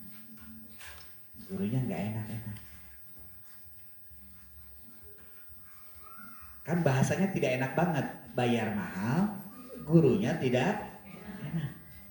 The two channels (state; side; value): identical; both; correlation 1.00